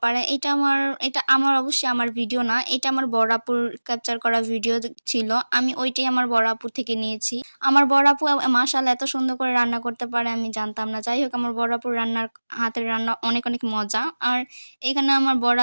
এটা আমার অবশ্যই আমার ভিডিও না। এটা আমার বড় আপুর ক্যাপচার করা ভিডিও ছিল। আমি ওইটাই আমার বড় আপুর থেকে নিয়েছি। আমার বড় আপু মাশাআল্লাহ এত সুন্দর করে রান্না করতে পারে আমি জানতাম না। যাই হোক আমার বড় আপুর হাতের রান্না অনেক, অনেক মজা। আর এখানে আমার বড়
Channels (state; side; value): inverted; both; correlation -1.00